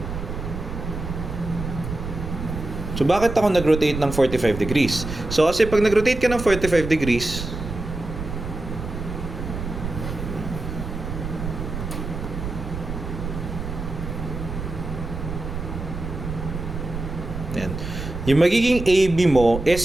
So, bakit ako nag-rotate ng 45 degrees? So, kasi pag nag-rotate ka ng 45 degrees, yan. Yung magiging AB mo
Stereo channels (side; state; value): right; noise; rumble, 7 dB below the sound